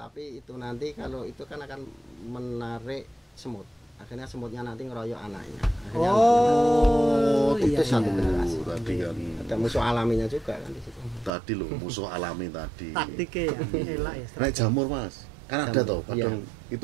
itu nanti kalau itu kan akan menarik semut. Akhirnya semutnya nanti ngeroyok anaknya. Akhirnya Oh, itu satu iya. generasi. Tadi kan. Ada musuh alaminya juga kan di situ. Tadi loh musuh alami tadi. Taktiknya ya, elak ya. Naik jamur Mas. Kan ada Jamur, toh, kadang iya.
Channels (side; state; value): left; drops out; at 11.3 s